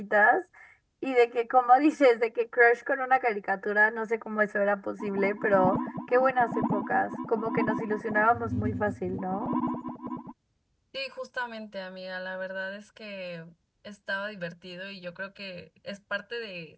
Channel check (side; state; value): both; identical; correlation 1.00